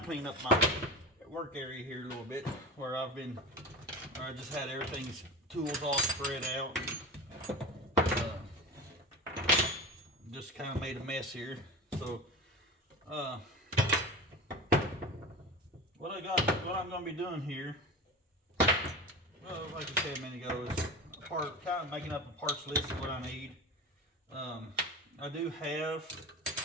clean up my work area here a little bit where I just had everything's tools all spread out. Just kind of made a mess here. So what I'm going to be doing here, well, like I said a minute ago, is kind of making up a parts list of what I need. I do have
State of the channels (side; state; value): both; normal; correlation 0.30